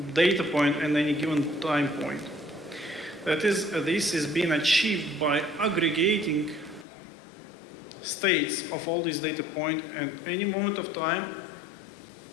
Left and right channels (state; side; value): drops out; right; at 6.9 s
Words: data point at any given time point. That is, this is being achieved by aggregating states of all these data points at any moment of time